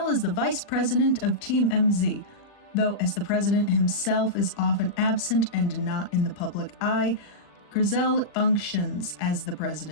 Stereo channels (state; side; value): late; right; 40 ms